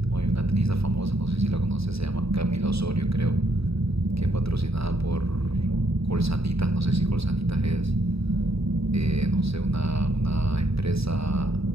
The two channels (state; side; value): late; left; 0.77 ms